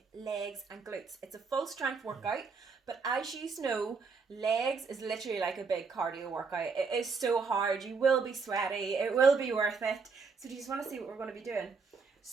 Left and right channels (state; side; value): quieter; left; 5.0 dB